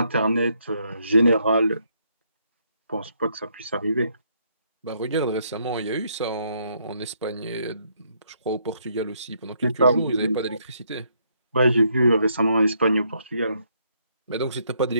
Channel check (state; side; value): inverted; both; correlation -0.72